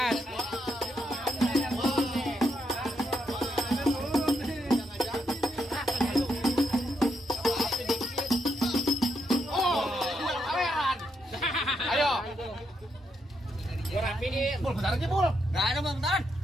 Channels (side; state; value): both; normal; correlation 0.79